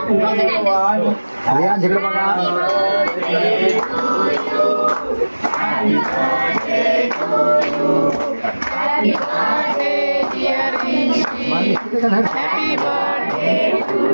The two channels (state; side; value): inverted; both; correlation -1.00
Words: रियान जिकडे बघा.